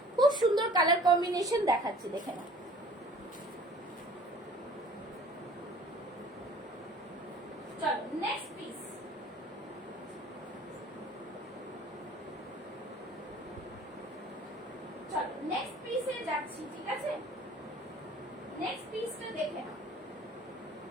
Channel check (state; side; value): normal; both; correlation 0.49